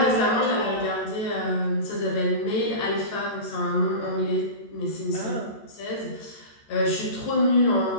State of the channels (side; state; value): right; late; 14 ms